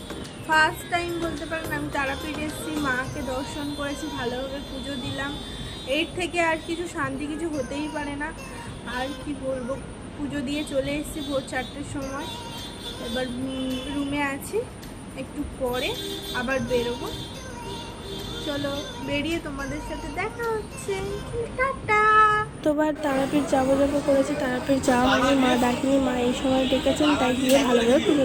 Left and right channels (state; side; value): identical; both; correlation 1.00